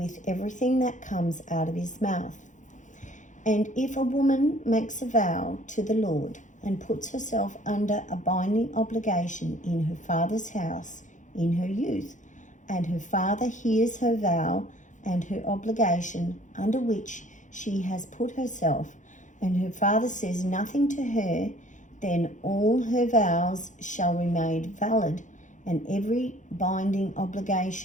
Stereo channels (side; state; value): right; late; 0.36 ms